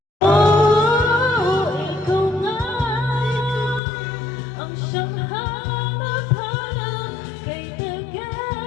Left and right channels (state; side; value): drops out; right; at 3.8 s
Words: Oh, ikaw nga ang siyang hanap-hanap, kay